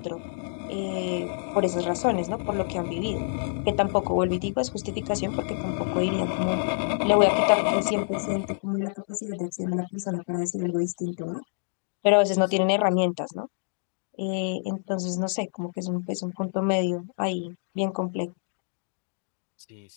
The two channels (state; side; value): silent; right; digital silence